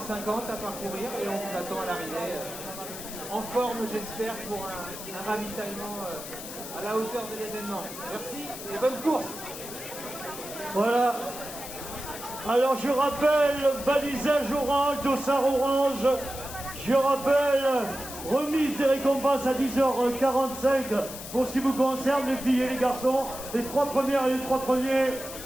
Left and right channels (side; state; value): left; noise; hiss, 11 dB below the sound